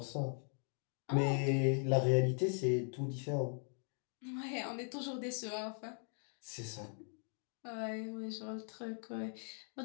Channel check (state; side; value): silent; right; 51 dB below the other